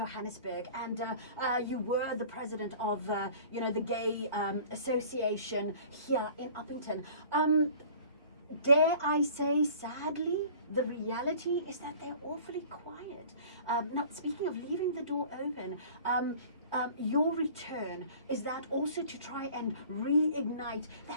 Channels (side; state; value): both; inverted; correlation -0.47